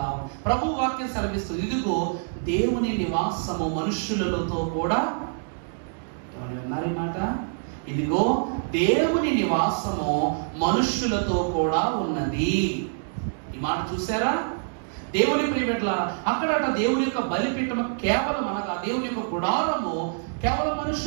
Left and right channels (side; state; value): left; silent; digital silence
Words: ప్రభు వాక్యం సెలవిస్తుంది, ఇదిగో దేవుని నివాసము మనుష్యులతో కూడా. ఏమని విన్నారు ఈ మాట? ఇదిగో దేవుని నివాసము మనుష్యులతో కూడా ఉన్నది. ఈ మాట చూసారా? దేవుని ప్రియబిడ్డలారా, అక్కడట దేవుని యొక్క బలిపీఠము కేవలం అనగా దేవుని యొక్క గుడారము కేవలం